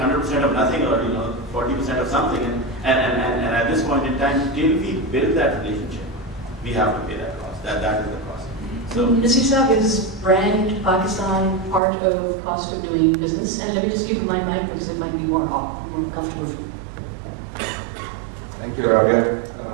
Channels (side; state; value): left; drops out; at 11.8 s